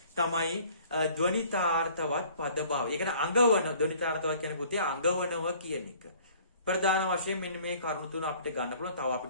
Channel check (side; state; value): both; inverted; correlation -0.54